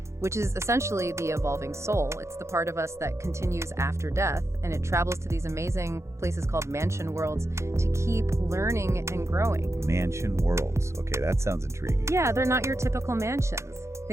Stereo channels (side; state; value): left; late; 0.14 ms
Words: which is essentially the evolving soul. It's the part of us that continues after death, and it travels to these amazing places called mansion worlds to keep learning and growing. Mansion worlds. Okay, that sounds intriguing. Yeah, they're not your typical mansions.